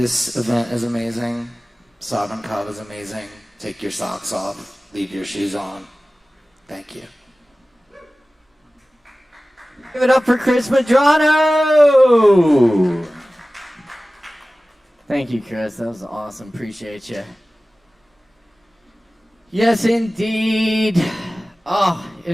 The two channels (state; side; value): normal; both; correlation 0.97